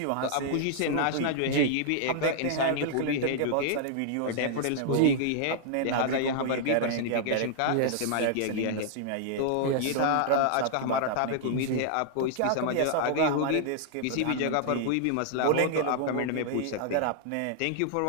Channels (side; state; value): both; different; correlation -0.01